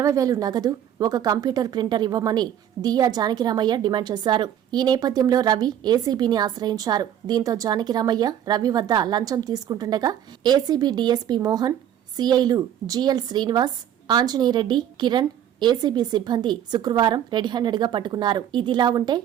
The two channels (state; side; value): quieter; left; 10.4 dB